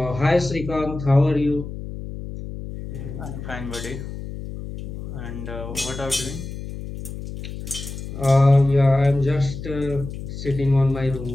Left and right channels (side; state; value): left; noise; hum, 9 dB below the sound